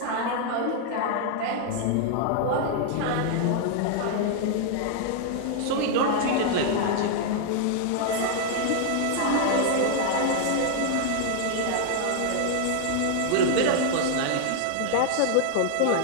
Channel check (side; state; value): both; different; correlation 0.00